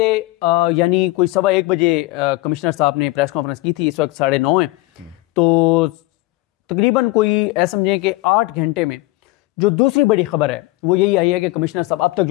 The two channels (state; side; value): quieter; right; 20.2 dB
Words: यानी कोई 1:15 बजे कमिश्नर साहब ने प्रेस कॉन्फ्रेंस की थी। इस वक्त 9:30 है तो तकरीबन कोई ऐसा समझें कि 8 घंटे में जो दूसरी बड़ी खबर है वो यही आई है कि कमिश्नर साहब, अब तक